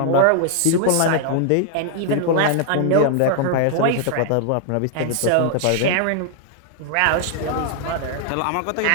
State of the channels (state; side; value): different; both; correlation 0.00